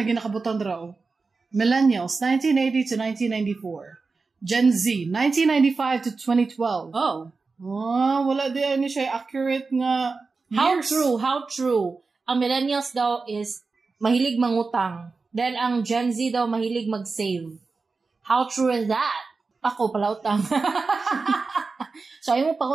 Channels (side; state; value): left; quieter; 4.2 dB